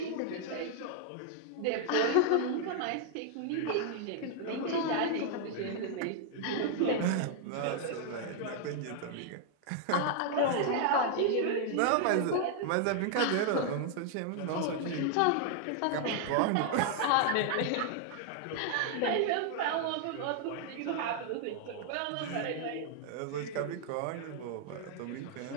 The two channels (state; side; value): different; both; correlation 0.00